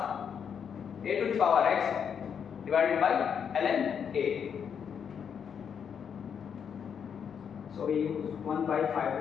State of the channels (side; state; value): right; quieter; 7.5 dB